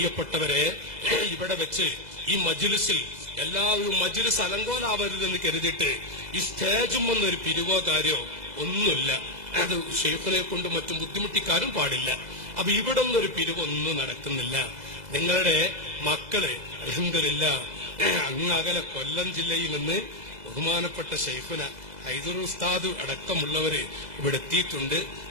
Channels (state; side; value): late; left; 2.0 ms